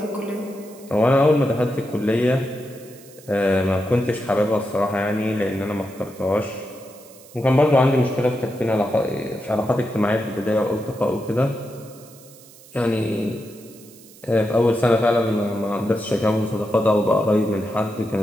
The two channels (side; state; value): right; noise; hiss, 22 dB below the sound